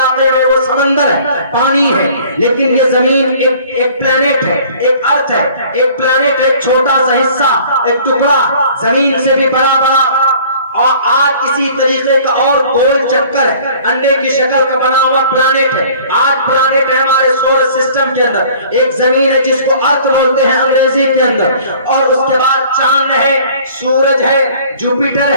में वो समंदर है, पानी है। लेकिन ये जमीन एक प्लेनेट है, एक अर्थ है, एक प्लेनेट, एक छोटा सा हिस्सा, एक टुकड़ा, जमीन से भी बड़ा बड़ा। और आज इसी तरीके का और गोल चक्कर अंडे की शक्ल का बना हुआ प्लैनेट है। 8 प्लैनेट है हमारे सोलर सिस्टम के अंदर। एक जमीन है जिसको अर्थ बोलते हैं अंग्रेजी के अंदर, और उसके बाद चांद है, सूरज है, जुपिटर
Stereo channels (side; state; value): both; inverted; correlation -0.51